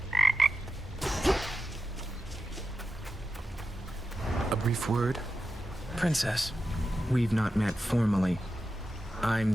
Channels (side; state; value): both; normal; correlation 0.91